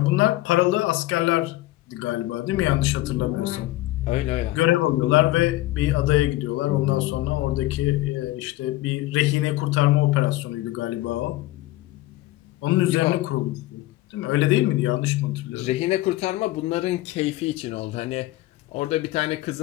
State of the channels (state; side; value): quieter; right; 17.2 dB